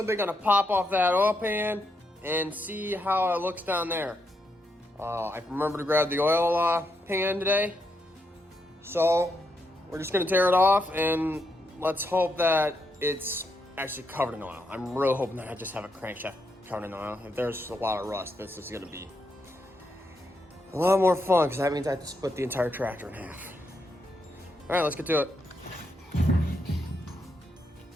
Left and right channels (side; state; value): both; normal; correlation 0.81